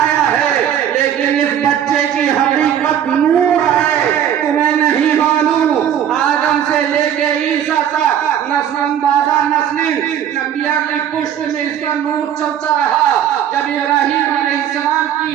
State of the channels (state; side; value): quieter; left; 9.8 dB